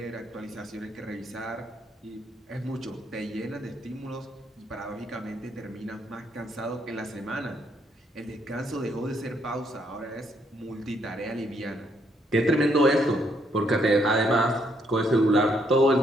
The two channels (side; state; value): both; normal; correlation 0.72